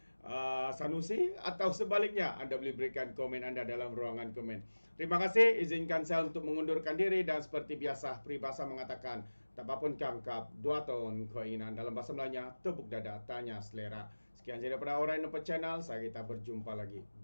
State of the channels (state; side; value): inverted; both; correlation -1.00